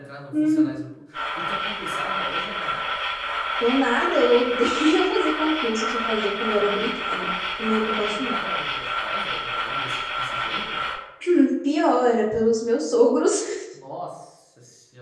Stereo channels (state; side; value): identical; both; correlation 1.00